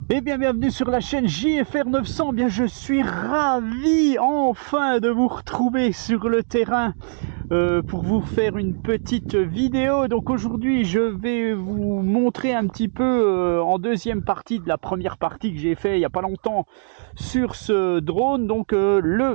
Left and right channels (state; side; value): silent; left; digital silence